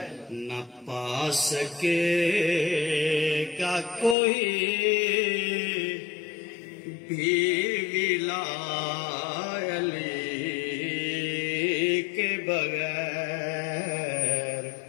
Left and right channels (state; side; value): drops out; right; at 4.2 s